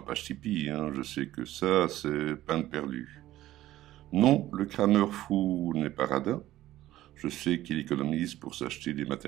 page Tipeee, hein. Je sais que ça c'est peine perdue. Non, le crameur fou n'est pas radin. Je sais qu'il économise pour s'acheter des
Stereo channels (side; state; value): left; quieter; 14.7 dB